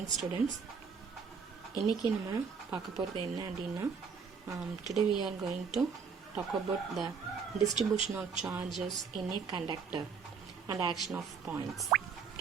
morning students. இன்னைக்கு நம்ம பார்க்க போறது என்ன அப்படினா today we are going to talk about the distribution of charges in a conductor and action of points.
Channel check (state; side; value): quieter; left; 5.9 dB